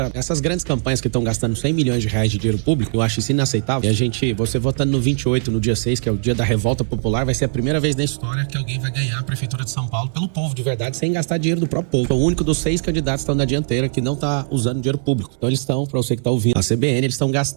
essas grandes campanhas que estão gastando 100 milhões de reais de dinheiro público, eu acho isso inaceitável. E você votando no 28, no dia 6, que é o dia da revolta popular, vai ser a primeira vez na história que alguém vai ganhar a Prefeitura de São Paulo pelo povo, de verdade, sem gastar dinheiro do próprio povo. Sou o único dos 6 candidatos que estão na dianteira que não tá usando dinheiro público. Então eles estão, pra você que tá ouvindo, a CBN, eles estão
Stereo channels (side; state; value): left; silent; 66 dB below the other